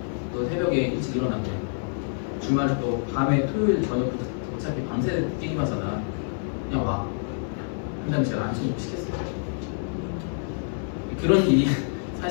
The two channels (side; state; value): right; silent; digital silence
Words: 또 새벽에 일찍 일어나고 주말에 또 밤에 토요일 저녁부터 어차피 밤새 게임하잖아. 그냥 와. 그 다음에 제가 안심 시켰어요. 그런 일이